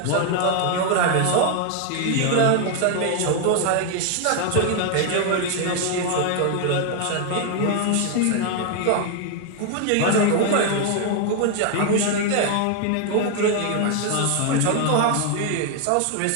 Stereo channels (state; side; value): different; both; correlation 0.00